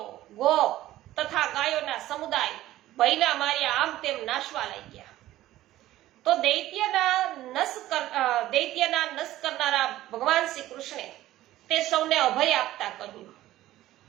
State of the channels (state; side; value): quieter; left; 14.9 dB